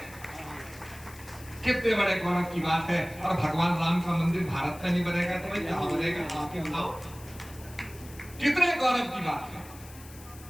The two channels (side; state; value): left; noise; hiss, 19 dB below the sound